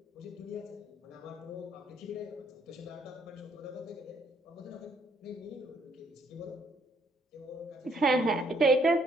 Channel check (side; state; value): both; normal; correlation 0.68